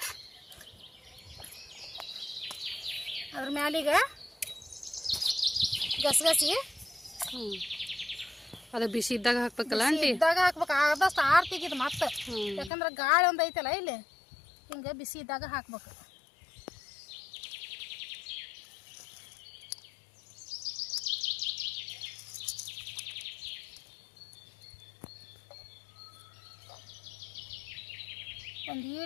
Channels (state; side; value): drops out; right; at 12.7 s